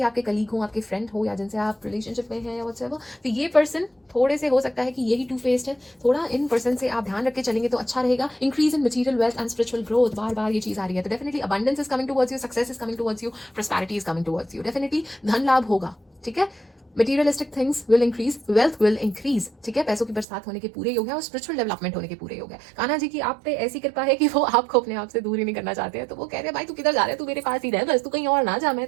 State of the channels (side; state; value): left; drops out; at 20.2 s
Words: आपके कलीग हो, आपके फ्रेंड हो, या जिनसे आप रिलेशनशिप में हैं या व्हाटसएवर। तो ये पर्सन थोड़े से हो सकता है कि यही टू फेस्ड है, थोड़ा इन पर्सन से आप ध्यान रख के चलेंगे तो अच्छा रहेगा। Increase in material wealth and spiritual growth, बार बार ये चीज़ आ रही है, तो definitely abundance is coming towards you, success is coming towards you, prosperity is coming towards you, definitely धन लाभ होगा, ठीक है? Materialistic things will increase, wealth will increase, ठीक है? पैसों की बरसात होने के पूरे योग है और स्पिरिचुअल डेवलपमेंट होने के पूरे योग है। कान्हा जी की आप पे ऐसी कृपा है कि वो आपको अपने आप से दूर ही नहीं करना चाहते हैं। तो वो कह रहे हैं भाई तू किधर जा रहा है, तू मेरे पास ही रह, बस तू कहीं और ना जा, मैं